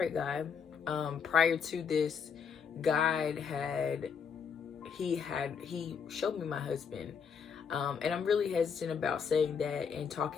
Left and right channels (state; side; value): quieter; right; 6.6 dB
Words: God. Prior to this, God he showed me my husband. And I'm really hesitant about saying that and